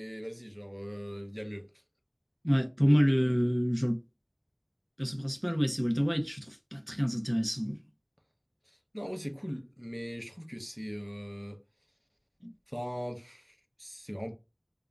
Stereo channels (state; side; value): identical; both; correlation 1.00